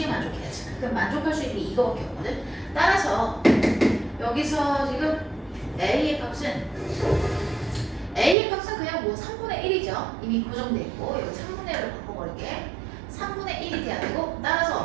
만족해야지. 그럼 만족할 수 있는 게 이거밖에 없거든. 따라서 여기서 지금 A의 값은 그냥 뭐 3분의 1이죠. 이미 고정돼 있고 여기 3분의 1로 바꿔버릴게. 3분의 1이 돼야 되고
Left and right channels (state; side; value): drops out; left; at 8.3 s